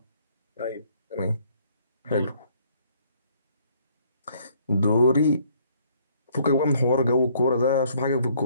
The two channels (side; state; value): both; inverted; correlation -0.63